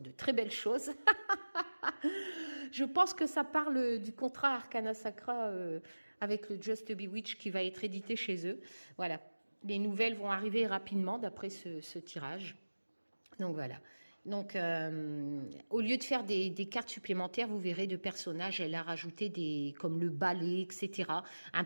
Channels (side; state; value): both; inverted; correlation -1.00